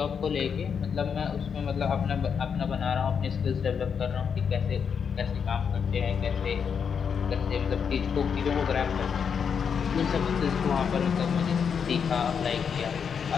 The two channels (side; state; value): right; quieter; 6.8 dB